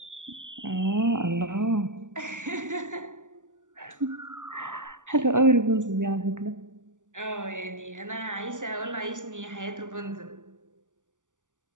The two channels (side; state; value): left; late; 0.87 ms